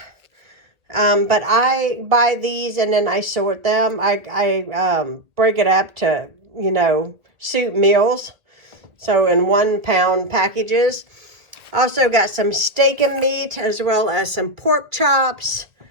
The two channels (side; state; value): left; late; 2.0 ms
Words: But I buy these and then I sort them. I break it up to, you know, soup meals. So in 1 pound packages. Also got some steak and meat as well as some pork chops.